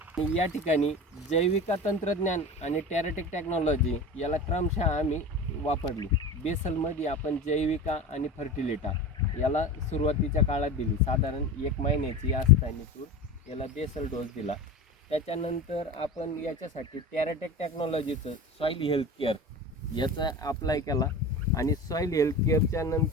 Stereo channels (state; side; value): normal; both; correlation 0.31